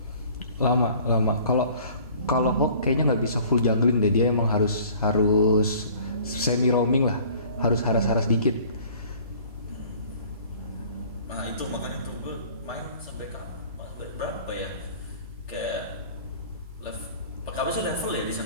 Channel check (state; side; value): inverted; both; correlation -0.50